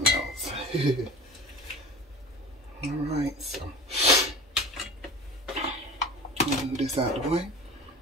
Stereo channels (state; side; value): normal; both; correlation 0.37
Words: else. Alright, so move this out of the way.